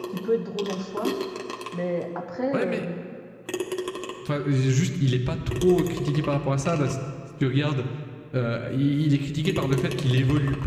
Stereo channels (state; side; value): identical; both; correlation 1.00